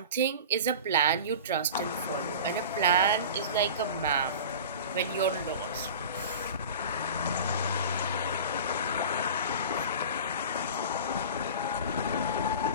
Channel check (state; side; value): inverted; both; correlation -0.35